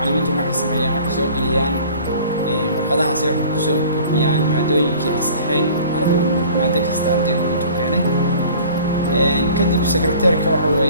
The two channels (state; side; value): inverted; both; correlation -0.48